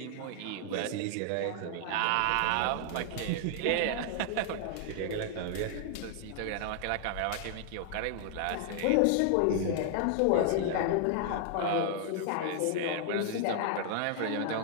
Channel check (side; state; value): both; different; correlation 0.00